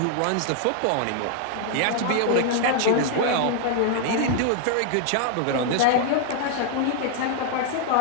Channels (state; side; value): different; both; correlation 0.00